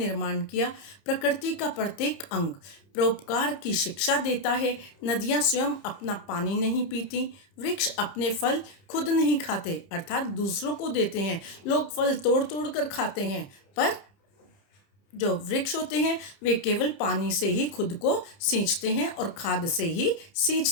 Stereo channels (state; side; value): late; right; 30 ms